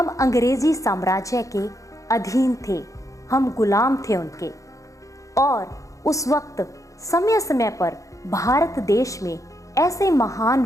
अंग्रेजी साम्राज्य के अधीन थे, हम गुलाम थे उनके। और उस वक्त समय समय पर भारत देश में ऐसे महान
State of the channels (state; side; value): late; right; 0.16 ms